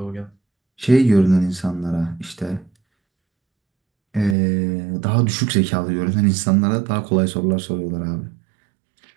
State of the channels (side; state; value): left; drops out; at 4.4 s